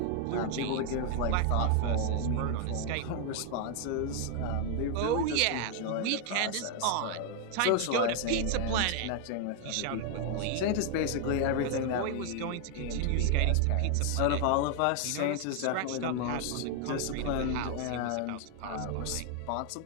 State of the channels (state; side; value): different; both; correlation 0.00